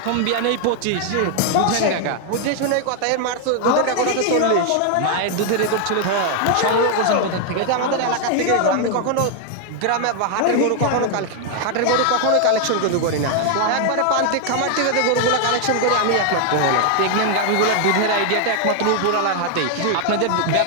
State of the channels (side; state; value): both; different; correlation 0.00